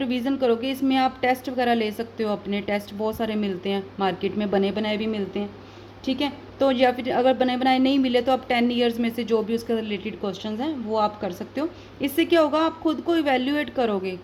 करोगे, इसमें आप टेस्ट वगैरह ले सकते हो। अपने टेस्ट बहुत सारे मिलते हैं मार्केट में, बने बनाए भी मिलते हैं, ठीक है। तो या फिर अगर बने बनाए नहीं मिले तो आप 10 ईयर्स में से जो भी उसके रिलेटेड क्वेश्चंस हैं वो आप कर सकते हो। इससे क्या होगा, आप खुद को इवेल्यूएट करोगे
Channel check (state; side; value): identical; both; correlation 1.00